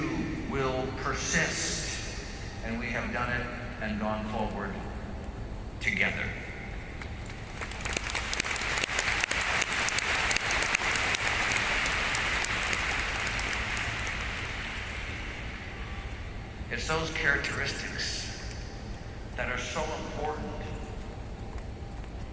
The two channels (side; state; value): both; identical; correlation 1.00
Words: will persist. And we have done it and gone forward together. It's those characteristics that are so important